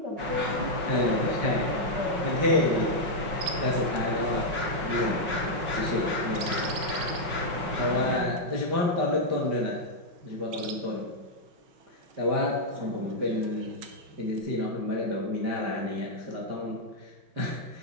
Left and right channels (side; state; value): left; late; 5.4 ms